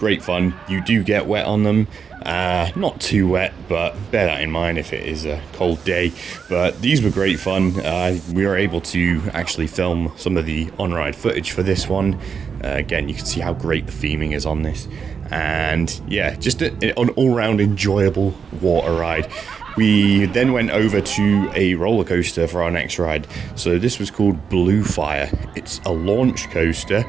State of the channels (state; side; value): quieter; left; 6.3 dB